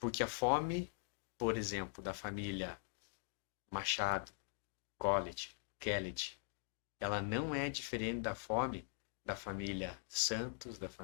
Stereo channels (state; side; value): silent; right; digital silence